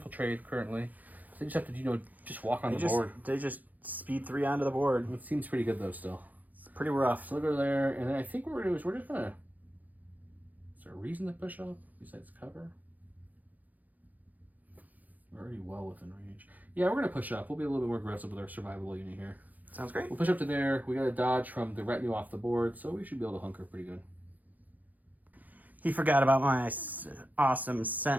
currently. So they just have to, just walk on the board. They just speed 3 onto the board. It seems pretty good though. Still, it's pretty rough. So we'll go there, and then I think what we're gonna do is we're just gonna. Is there a reason to push up besides cover? We're already well within range. Yeah, we're gonna push up. We'll be a little bit more aggressive with our survivable unit here. Sounds great. We'll push up to there. We got to dodge from the retinue off the board, so we should be able to hunker pretty good. He forgot about my awesome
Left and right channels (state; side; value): late; left; 0.081 ms